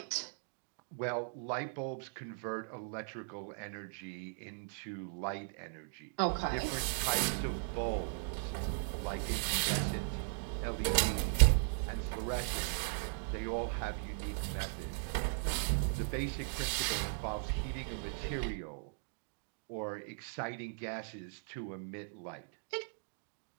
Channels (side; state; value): left; silent; digital silence